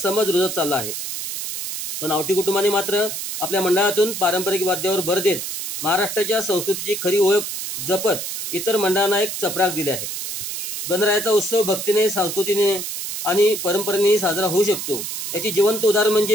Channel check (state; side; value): noise; right; hiss, 5 dB below the sound